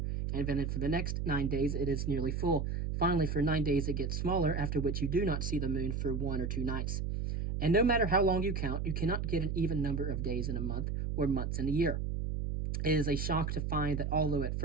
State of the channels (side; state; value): right; noise; hum, 1 dB below the sound